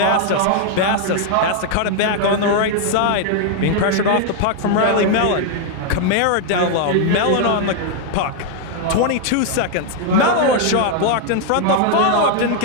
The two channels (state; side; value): different; both; correlation 0.00